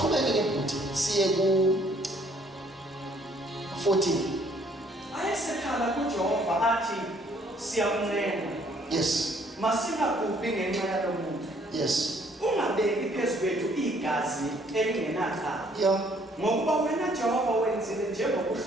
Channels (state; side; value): normal; both; correlation 0.63